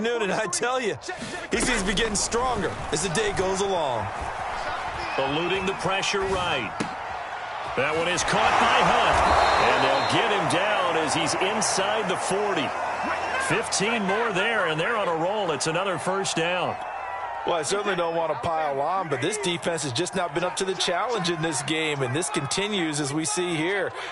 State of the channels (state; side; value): identical; both; correlation 1.00